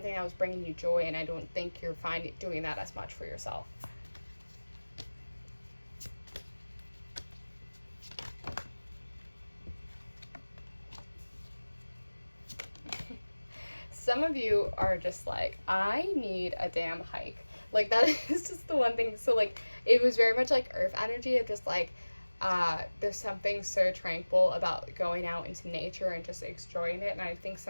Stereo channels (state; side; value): inverted; both; correlation -1.00